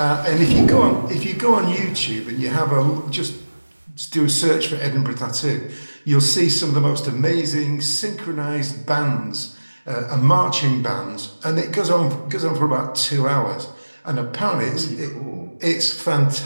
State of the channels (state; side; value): inverted; both; correlation -1.00